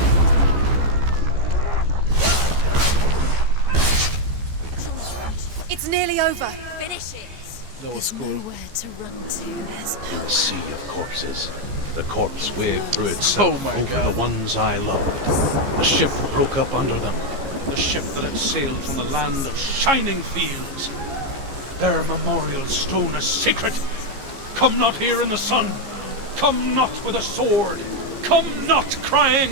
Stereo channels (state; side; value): late; left; 15 ms